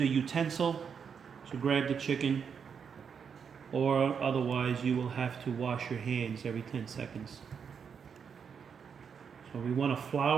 utensil to grab the chicken, or otherwise you will have to wash your hands every 10 seconds. So we want to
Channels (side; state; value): left; quieter; 6.7 dB